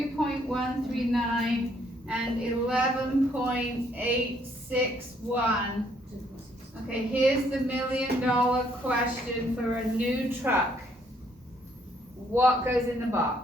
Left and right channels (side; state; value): both; normal; correlation 0.68